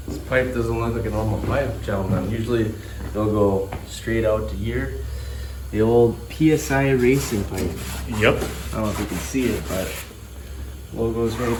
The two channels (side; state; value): both; identical; correlation 1.00